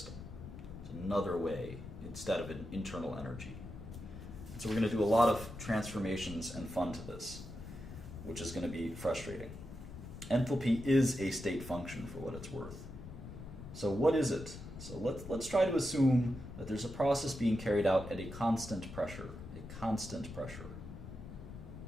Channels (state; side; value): noise; left; rumble, 12 dB below the sound